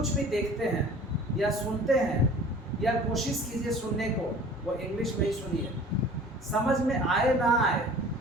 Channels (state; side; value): normal; both; correlation 0.45